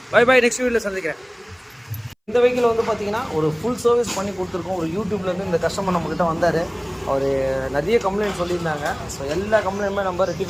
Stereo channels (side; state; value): both; identical; correlation 1.00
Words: bye bye. Next வீடியோவில் சந்திக்கிறேன். இந்த வெஹிக்கிள் வந்து பார்த்திங்கன்னா ஒரு ஃபுல் சர்வீஸ் பண்ணி கொடுத்துருக்கோம். ஒரு யூடியூப்லேருந்து இந்த கஸ்டமர் நம்மக்கிட்ட வந்தார். அவர் நிறைய கம்ப்ளைண்ட் சொல்லியிருந்தாங்க. ஸோ எல்லா கம்ப்ளைண்ட்டுமே நம்ம